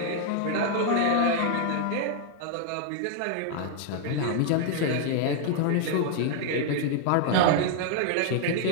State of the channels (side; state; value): both; different; correlation 0.00